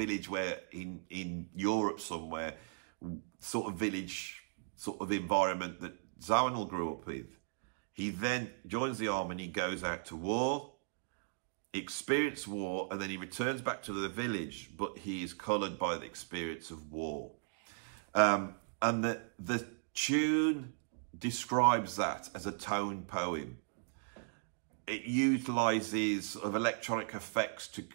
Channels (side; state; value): left; silent; digital silence